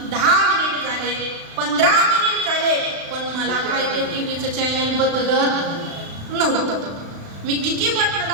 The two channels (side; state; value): left; late; 36 ms